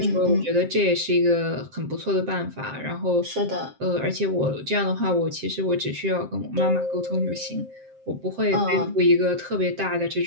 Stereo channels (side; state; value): left; late; 7.6 ms